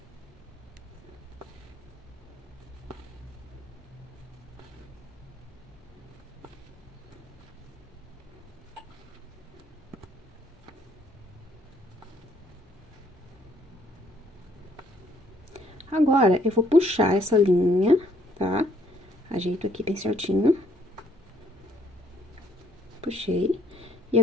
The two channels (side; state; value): both; normal; correlation 0.66